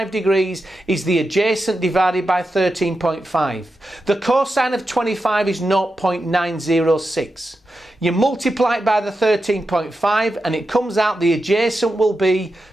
degrees is the adjacent divided by 13.5. The cosine of 25 is 0.906. You multiply it by the 13.5 and it comes out the adjacent will be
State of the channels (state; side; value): normal; both; correlation 0.89